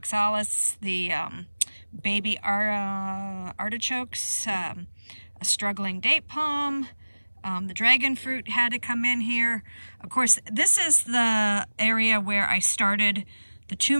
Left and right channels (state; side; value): inverted; both; correlation -1.00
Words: the baby artichokes, a struggling date palm, the dragon fruit had to come in here. Of course, this is the area where I started the